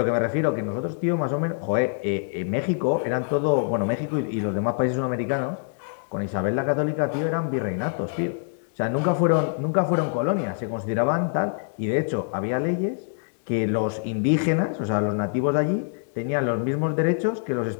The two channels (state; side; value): silent; right; digital silence